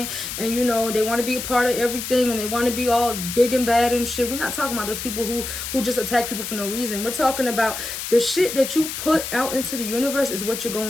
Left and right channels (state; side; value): noise; left; hiss, 6 dB below the sound